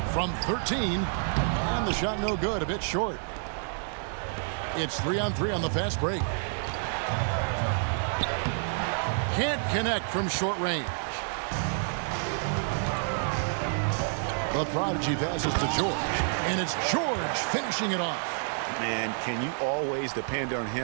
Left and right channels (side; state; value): left; silent; 59 dB below the other